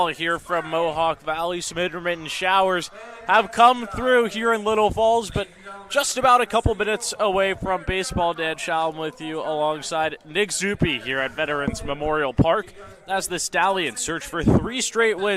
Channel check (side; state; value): both; identical; correlation 1.00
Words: here from Mohawk Valley. Some intermittent showers have come through here in Little Falls, but just about a couple minutes away from baseball. Dan Shalom with you alongside Nick Zuppi here at Veterans Memorial Park as the Stallions search for 3 straight